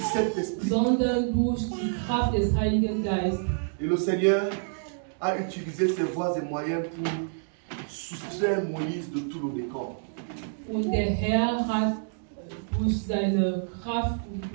Saint-Esprit. sondern durch die Kraft des Heiligen Geistes. Et le Seigneur a utilisé ses voies et moyens pour soustraire Moïse de tout le décor. Und der Herr hat durch seine Kraft und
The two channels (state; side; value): silent; left; digital silence